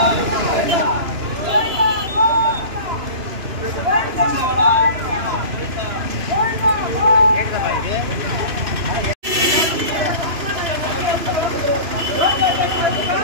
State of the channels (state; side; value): late; left; 2.9 ms